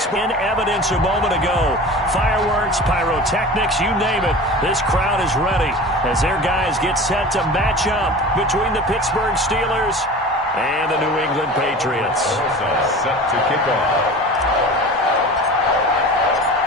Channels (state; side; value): normal; both; correlation 0.36